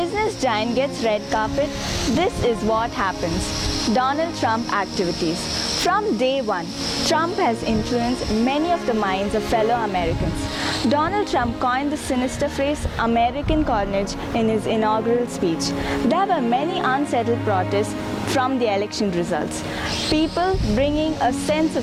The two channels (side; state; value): both; identical; correlation 1.00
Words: giant gets red carpet, this is what happens. Donald Trump activities. From day one, Trump has influenced many of the minds of fellow Americans. Donald Trump coined the sinister phrase American carnage in his inaugural speech. There were many unsettled protests from the election results. People bringing a sense